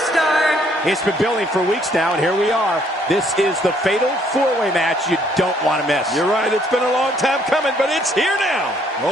It's been building for weeks now, and here we are. This is the fatal four-way match you don't want to miss. You're right, it's been a long time coming, but it's here now.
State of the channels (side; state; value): both; normal; correlation 0.66